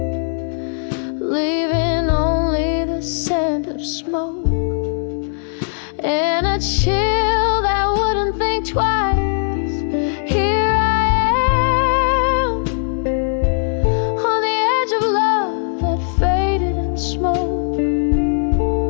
leaving only the scent of smoke and a chill that wouldn't think twice. Here smoke,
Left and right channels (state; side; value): silent; right; digital silence